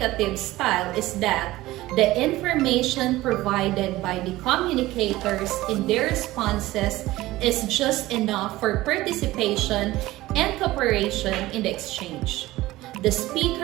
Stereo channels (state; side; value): quieter; left; 17.5 dB